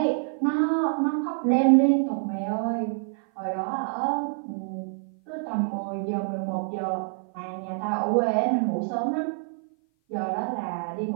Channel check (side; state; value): left; silent; 56 dB below the other